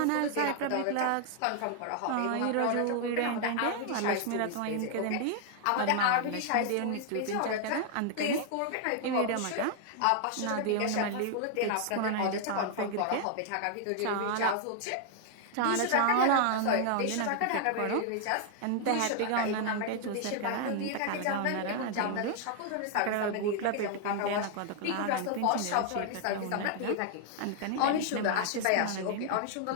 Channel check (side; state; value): both; different; correlation 0.00